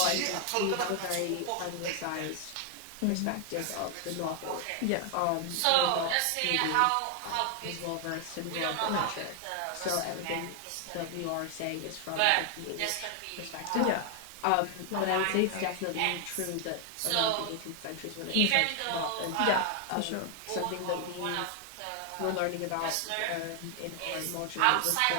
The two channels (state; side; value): different; both; correlation 0.00